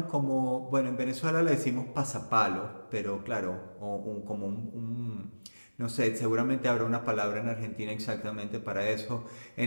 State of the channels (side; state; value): both; inverted; correlation -1.00